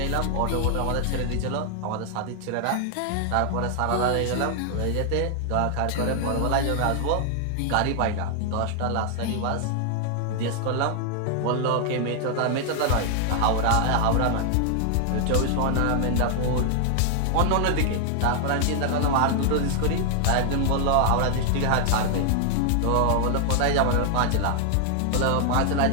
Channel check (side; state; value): both; different; correlation 0.00